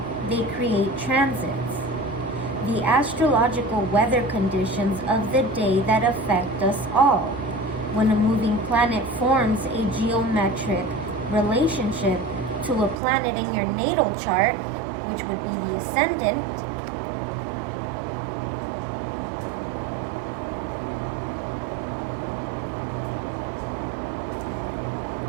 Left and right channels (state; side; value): drops out; left; at 13.0 s